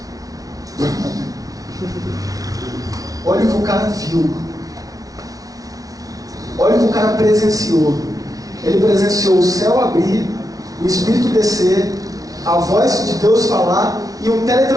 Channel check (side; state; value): left; late; 0.18 ms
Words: Olha o que o cara viu. Olha o que o cara presenciou. Ele presenciou o céu abrir, o Espírito descer, a voz de Deus falar e um